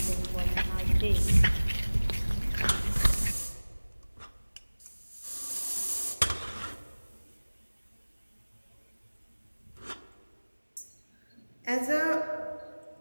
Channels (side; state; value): both; inverted; correlation -1.00